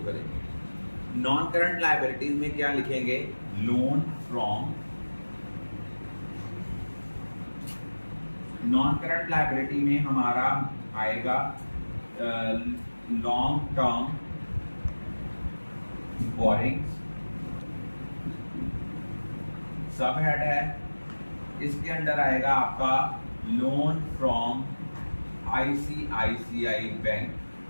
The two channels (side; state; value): both; inverted; correlation -1.00